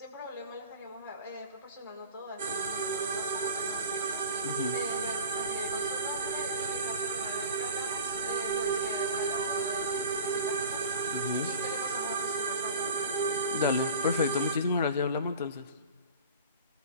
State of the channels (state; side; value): inverted; both; correlation -0.39